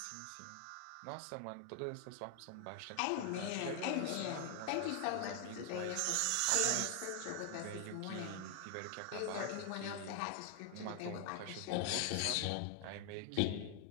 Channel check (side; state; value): both; different; correlation 0.00